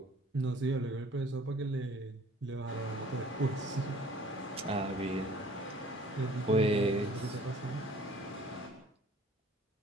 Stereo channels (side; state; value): both; normal; correlation 0.53